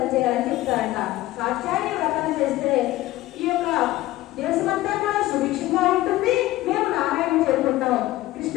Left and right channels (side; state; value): right; quieter; 16.6 dB